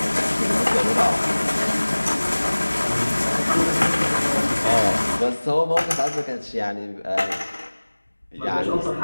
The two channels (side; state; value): both; inverted; correlation -1.00